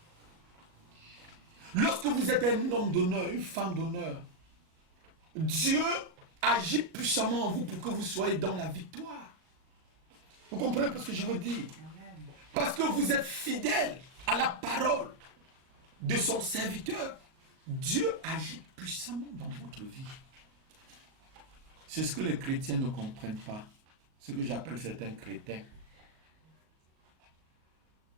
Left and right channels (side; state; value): left; late; 37 ms